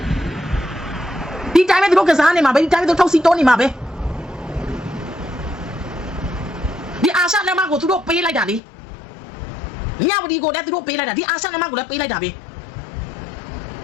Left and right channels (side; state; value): right; drops out; at 8.6 s